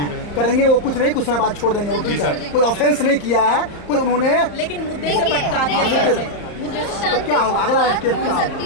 करेंगे वो कुछ नहीं, कुछ समय बाद छोड़ देंगे वो टीचर, कोई ऑफेंस नहीं किया है, कोई उन्होंने लेकिन मुद्दे से देखिए, भटका दिया देखिए, सर से। जो शांति क्या होगा? अगला बात स्टेप हो क्या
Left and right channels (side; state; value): right; late; 34 ms